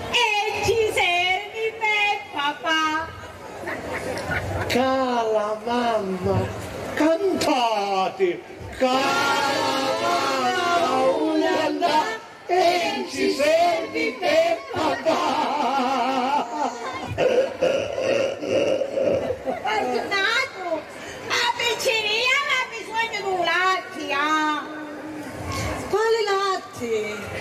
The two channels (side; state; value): both; identical; correlation 1.00